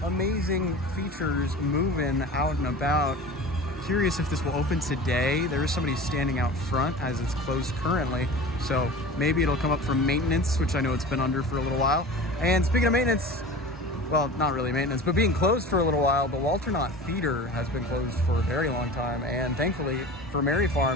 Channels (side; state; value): both; normal; correlation 0.36